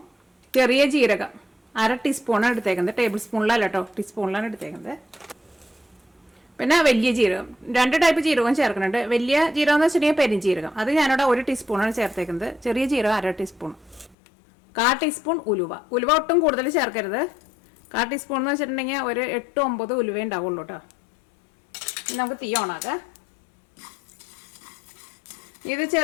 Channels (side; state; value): right; drops out; at 14.2 s